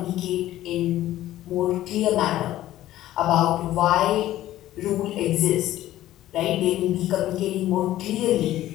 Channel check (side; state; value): right; quieter; 14.1 dB